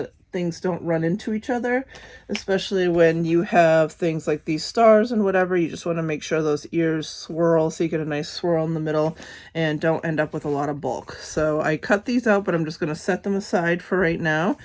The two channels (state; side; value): identical; both; correlation 1.00